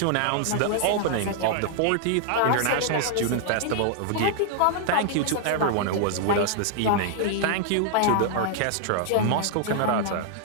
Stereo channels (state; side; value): different; both; correlation 0.00